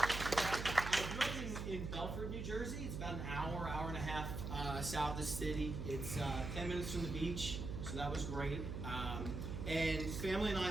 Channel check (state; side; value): noise; right; hum, 5 dB below the sound